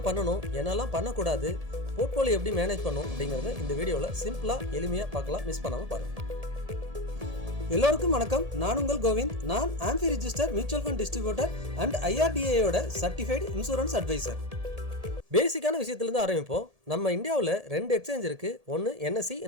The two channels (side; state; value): left; late; 1.7 ms